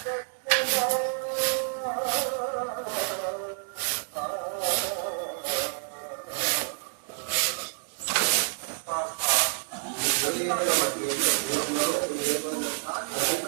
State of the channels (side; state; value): left; silent; digital silence